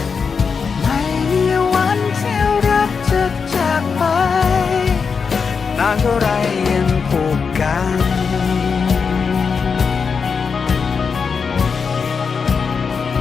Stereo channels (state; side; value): quieter; right; 5.6 dB